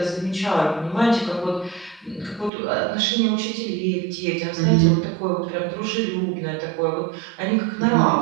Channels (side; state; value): left; drops out; at 2.5 s